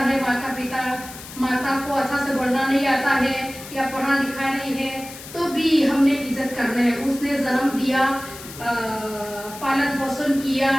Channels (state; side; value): noise; left; hiss, 14 dB below the sound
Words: माता को अच्छा से बोलना नहीं आता है या पढ़ा लिखा नहीं है, तो भी हमने इज्जत करना है। उसने जन्म दिया, पालन पोषण किया,